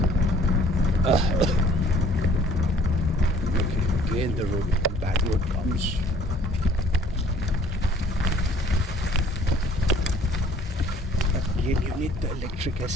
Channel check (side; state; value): both; normal; correlation 0.55